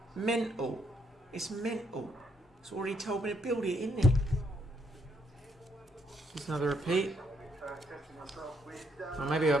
Mental. It's mental. It's already told me to build it, isn't it? Just another repeat. Or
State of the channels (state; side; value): normal; both; correlation 0.73